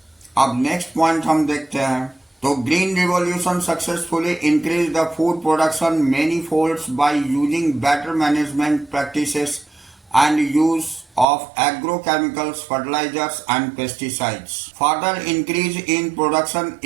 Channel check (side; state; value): left; drops out; at 11.2 s